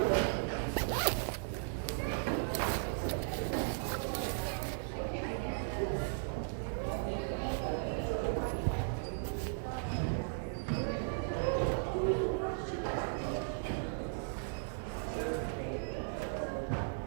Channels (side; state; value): left; silent; digital silence